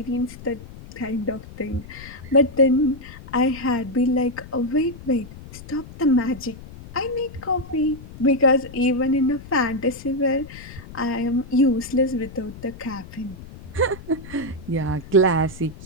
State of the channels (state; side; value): noise; left; rumble, 16 dB below the sound